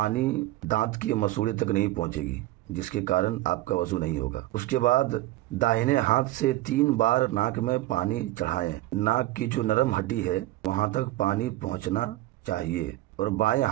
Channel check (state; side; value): quieter; left; 16.8 dB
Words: دانت کے مسوڑے تک نہیں پہنچے گی، جس کے کارن آپ کا وضو نہیں ہوگا۔ اس کے بعد داہنے ہاتھ سے 3 بار ناک میں پانی چڑھائیں، ناک کی جو نرم ہڈی ہے وہاں تک پانی پہنچنا چاہیے، اور بائیں